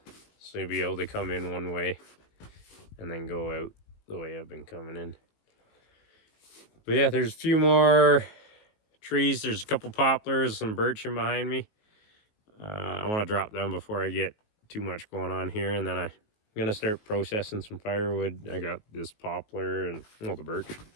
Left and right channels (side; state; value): right; late; 19 ms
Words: so you'll be able to come in one way and then go out the way I've been coming in. But yeah, there's a few more trees. There's a couple poplars, some birch in behind me. I want to drop them before I get too much going on here, and then I'm gonna start processing some firewood. I got this poplar and the birch,